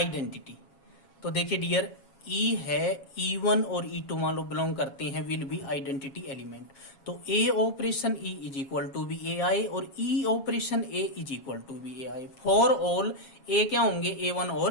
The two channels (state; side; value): late; right; 7.2 ms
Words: तो देखिए डियर, ई है, E1 और E2 मान लो बिलोंग करते हैं, विल बी आइडेंटिटी एलिमेंट। तो A operation E is equal to B A I और E operation A is equal to B A I. For all A क्या होंगे, A1